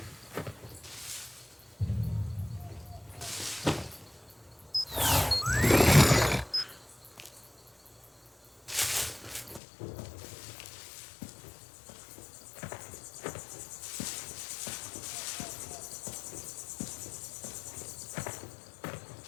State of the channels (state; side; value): drops out; right; at 9.6 s